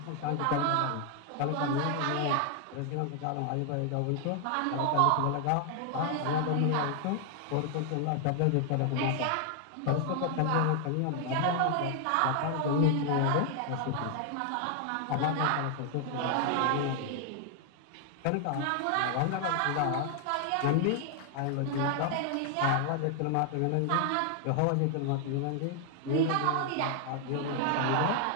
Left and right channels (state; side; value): different; both; correlation 0.00